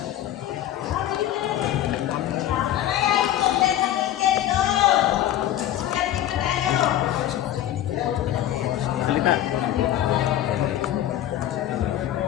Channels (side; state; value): right; quieter; 12.3 dB